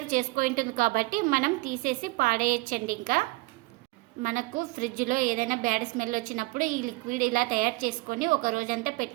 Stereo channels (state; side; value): quieter; left; 23.8 dB